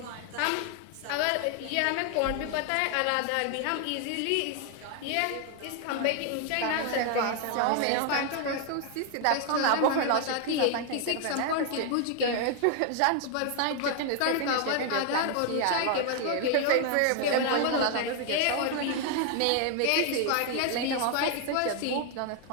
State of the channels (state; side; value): different; both; correlation 0.00